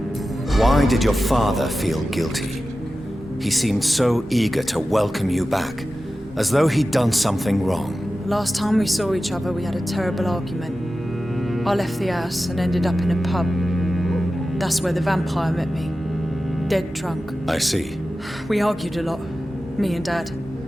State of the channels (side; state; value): both; normal; correlation 0.94